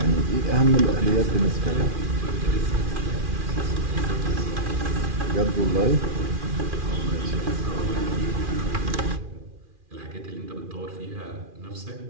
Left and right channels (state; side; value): late; left; 2.4 ms